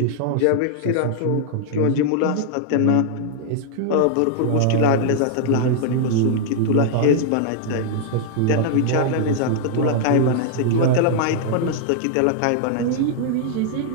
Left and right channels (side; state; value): both; different; correlation -0.01